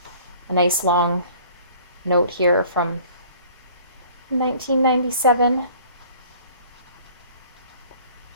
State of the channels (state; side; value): inverted; both; correlation -0.52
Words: a nice long note here from 1997.